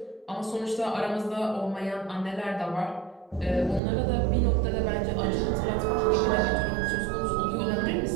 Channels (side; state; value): left; drops out; at 3.8 s